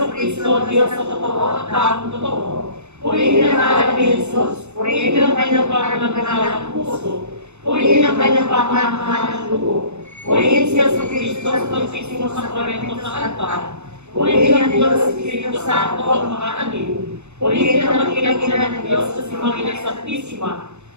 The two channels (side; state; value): left; late; 0.82 ms